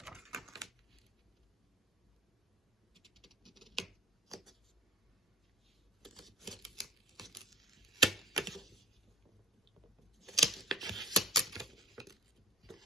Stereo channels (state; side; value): normal; both; correlation 0.37